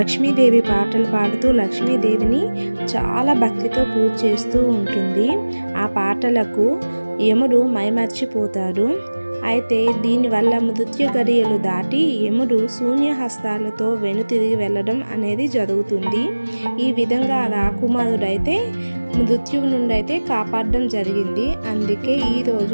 పాటలు పాడుతూ లక్ష్మీదేవిని చాలా భక్తితో పూజ చేస్తూ ఉంటుంది. ఆ పాటలకు యముడు మైమర్చిపోతాడు. అయితే దీనివల్ల మృత్యు గడియలు దాటి యముడు శూన్యహస్తాలతో వెనుతిరిగి వెళ్ళడం అనేది జరుగుతుంది. ఈ విధంగా రాకుమారుడైతే మృత్యువు నుండి అయితే కాపాడడం జరిగింది. అందుకే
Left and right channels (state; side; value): inverted; both; correlation -1.00